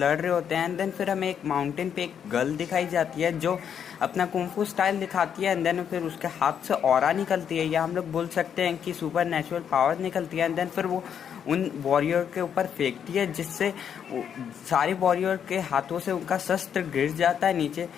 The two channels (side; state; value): right; quieter; 8.2 dB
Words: रहे होते हैं। एंड देन फिर हमें एक माउंटेन पे एक गर्ल दिखाई जाती है जो अपना कुंफू स्टाइल दिखाती है। एंड देन फिर उसके हाथ से ऑरा निकलती है, या हम लोग बोल सकते हैं कि सुपर नेचुरल पावर निकलती है। एंड देन फिर वो उन वॉरियर के ऊपर फेंकती है, जिससे सारे वॉरियर के हाथों से उनका शस्त्र गिर जाता है नीचे।